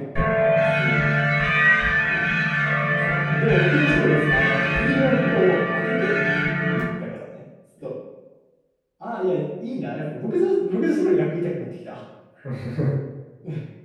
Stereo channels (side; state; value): both; identical; correlation 1.00